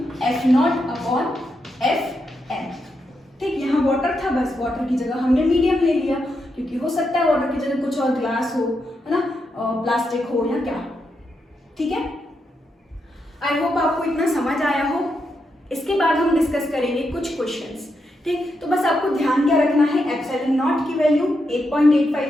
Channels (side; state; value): both; normal; correlation 0.83